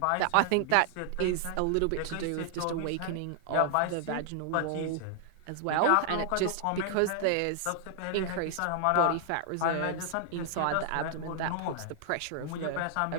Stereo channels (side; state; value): both; different; correlation -0.01